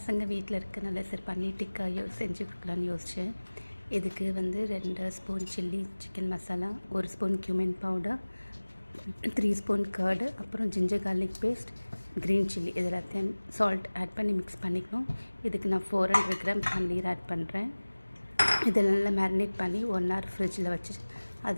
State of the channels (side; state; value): both; inverted; correlation -1.00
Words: வீட்டில் இருக்கனால சரி பன்னீர் டிக்கா செஞ்சு கொடுக்கலான்னு யோசித்தேன். இதுக்கு வந்து 2 spoon chilli chicken masala, 1 spoon cumin powder, 3 spoon curd, அப்புறம் ginger garlic paste, green chilli இது எல்லாத்தையும் சால்ட் ஆட் பண்ணி மிக்ஸ் பண்ணிக்கணும். இதுக்கு நான் 400 கிராம் பன்னீர் ஆட் பண்ணுறேன். இதை நல்லா மேரினேட் பண்ணி 1 hour ஃப்ரிட்ஜில் வச்சு